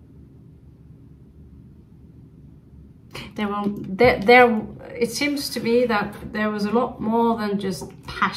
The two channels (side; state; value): both; identical; correlation 1.00